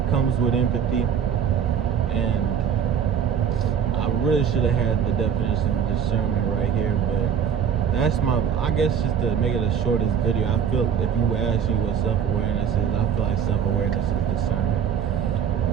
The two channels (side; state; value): left; quieter; 8.0 dB